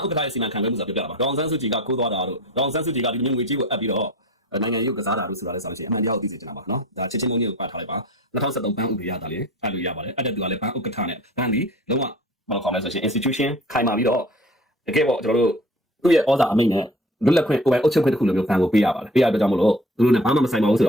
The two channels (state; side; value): normal; both; correlation 0.43